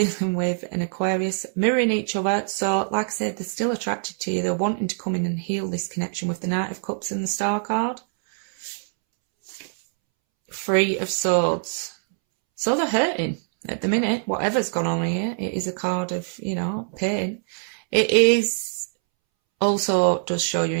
with an Aquarius, mirroring each other. So, like I said, they're still attracted to you. They're wanting to come in and heal this connection with the Knight of Cups and the Star card. Three of Swords. So they're hurting at the minute. Whatever's gone on here, it is a card of, you know, pain. It is also does show you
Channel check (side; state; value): left; silent; 63 dB below the other